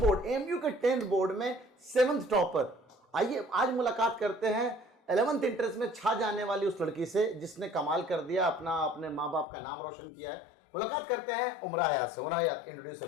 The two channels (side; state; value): right; drops out; at 9.5 s